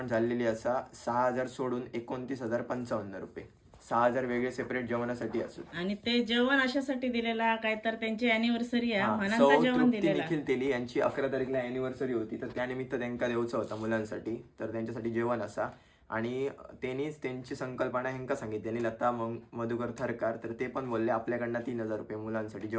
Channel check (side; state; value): both; identical; correlation 1.00